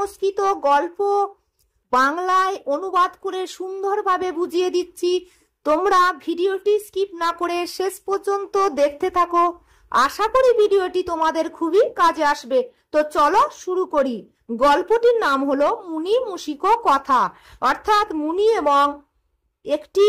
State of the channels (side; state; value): both; identical; correlation 1.00